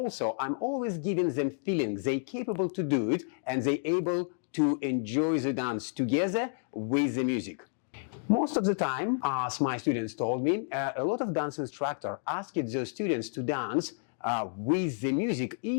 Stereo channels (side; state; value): right; silent; digital silence